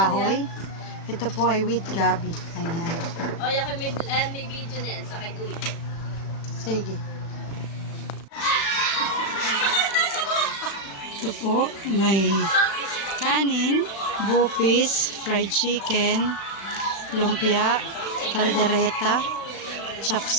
Ito po ay with gabi. Ayan. O, yakin may video na yan. Sakay tuwi. Sige. Ito po, may kanin, bupis, fried chicken, lumpia, kaldereta,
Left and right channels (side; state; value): right; late; 35 ms